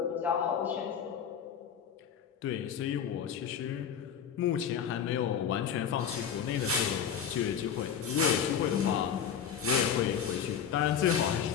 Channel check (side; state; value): right; quieter; 7.9 dB